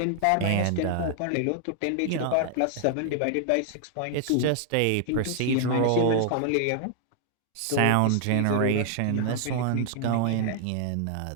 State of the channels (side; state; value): both; different; correlation 0.00